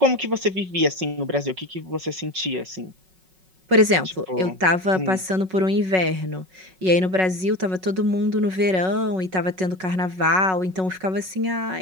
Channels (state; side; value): late; left; 5.4 ms